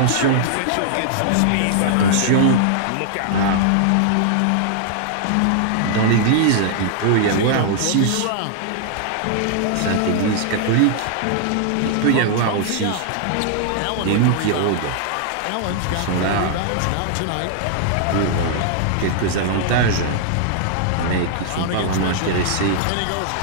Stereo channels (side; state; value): both; different; correlation -0.01